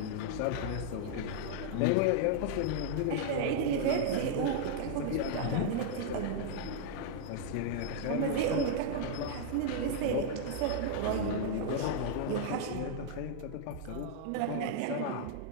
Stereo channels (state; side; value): different; both; correlation -0.01